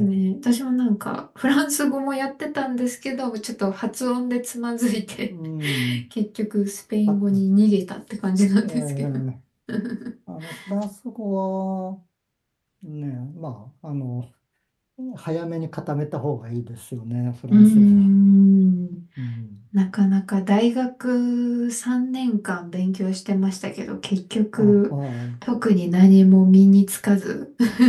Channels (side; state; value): both; identical; correlation 1.00